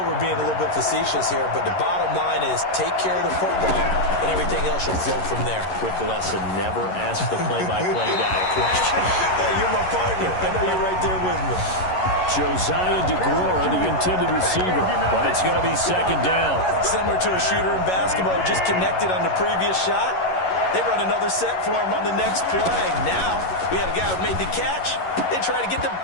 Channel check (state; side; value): late; right; 11 ms